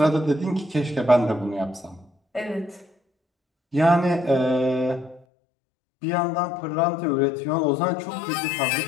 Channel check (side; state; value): right; drops out; at 5.2 s